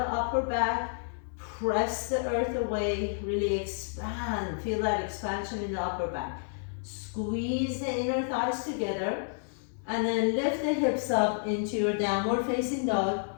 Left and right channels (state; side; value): silent; right; 58 dB below the other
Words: upper back. Press the earth away, really expand. Feel that expansion in the upper back. Squeeze the inner thighs together and then lift the hips up into your downward facing dog.